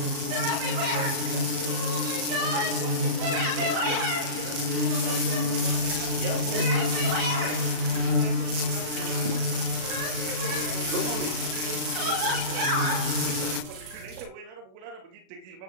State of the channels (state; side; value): late; left; 37 ms